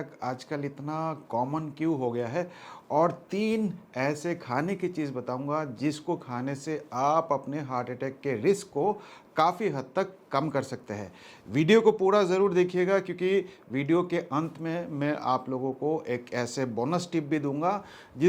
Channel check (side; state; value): both; identical; correlation 1.00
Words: आजकल इतना कॉमन क्यों हो गया है और 3 ऐसे खाने की चीज़ बताऊंगा जिसको खाने से आप अपने हार्ट अटैक के रिस्क को काफ़ी हद तक कम कर सकते हैं। वीडियो को पूरा ज़रूर देखिएगा क्योंकि वीडियो के अंत में मैं आप लोगों को एक ऐसे बोनस टिप भी दूंगा